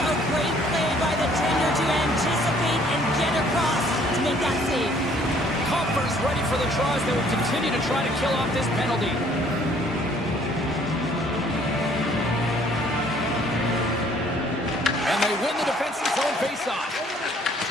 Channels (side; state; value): both; normal; correlation 0.60